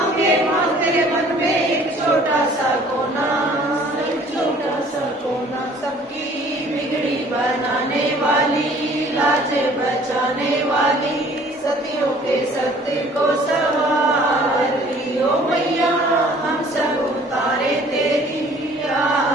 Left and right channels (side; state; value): both; normal; correlation 0.54